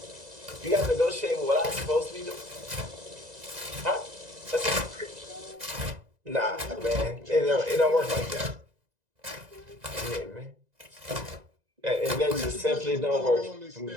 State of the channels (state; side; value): late; left; 2.0 ms